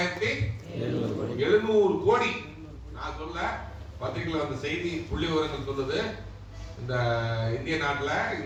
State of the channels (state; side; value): identical; both; correlation 1.00